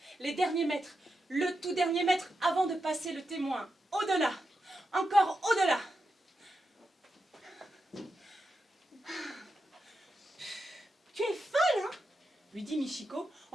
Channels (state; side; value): normal; both; correlation 0.87